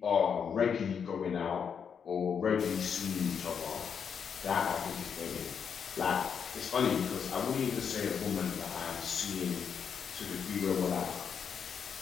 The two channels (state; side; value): quieter; right; 7.0 dB